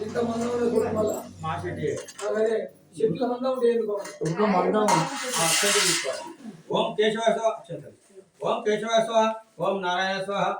ఇంత మందం మా చెట్టు చెట్ల మందం ఉంటే ఓం కేశవాయ స్వాహ, ఓం కేశవాయ స్వాహ, ఓం నారాయణ స్వాహ,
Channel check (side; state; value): both; identical; correlation 1.00